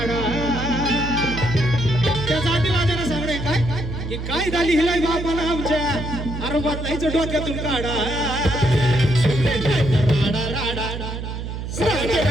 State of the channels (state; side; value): noise; right; hum, 6 dB below the sound